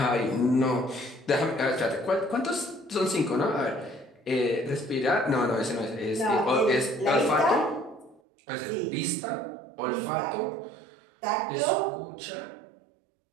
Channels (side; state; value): left; drops out; at 8.2 s